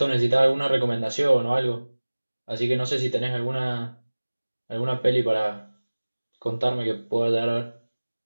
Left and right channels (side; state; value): both; inverted; correlation -1.00